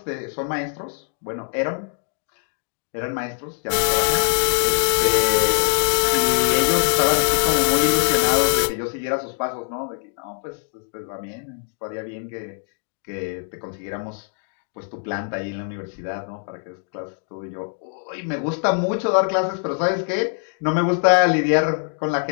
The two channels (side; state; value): right; silent; 64 dB below the other